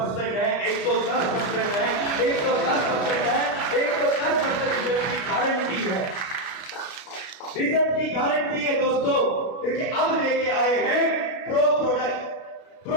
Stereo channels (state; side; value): late; right; 33 ms